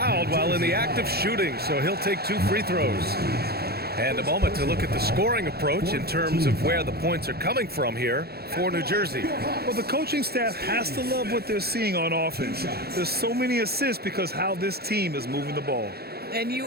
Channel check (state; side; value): late; left; 0.46 ms